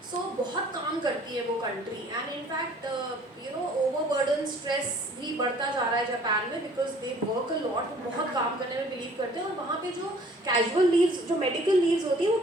so बहुत काम करती है वो country, and in fact overburden, stress भी बढ़ता जा रहा है जापान में, because they work a lot, बहुत काम करने में बिलीव करते हैं। और वहाँ पे जो कैजुअल लीव्स, जो मेडिकल लीव्स होती है, वो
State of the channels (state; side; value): normal; both; correlation 0.54